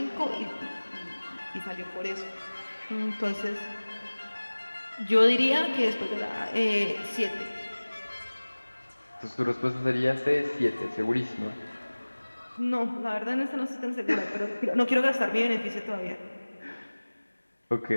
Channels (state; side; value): inverted; both; correlation -1.00